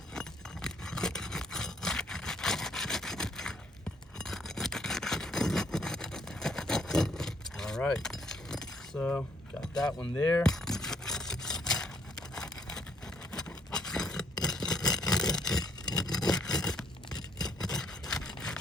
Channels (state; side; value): normal; both; correlation 0.67